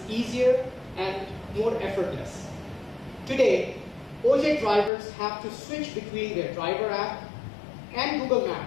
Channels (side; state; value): right; drops out; at 4.9 s